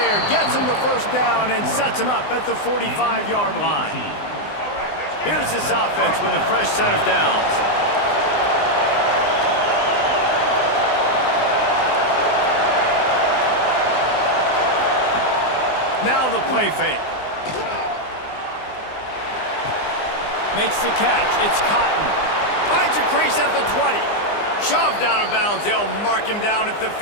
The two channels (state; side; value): late; right; 20 ms